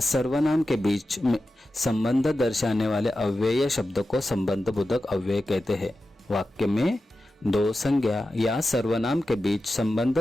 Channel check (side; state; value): both; normal; correlation 0.92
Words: सर्वनाम के बीच में संबंध दर्शाने वाले अव्यय शब्द को संबंध बोधक अव्यय कहते हैं। वाक्य में दो संज्ञा या सर्वनाम के बीच संबंध